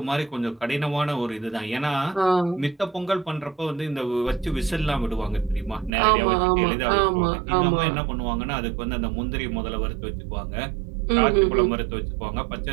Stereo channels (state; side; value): drops out; left; at 5.9 s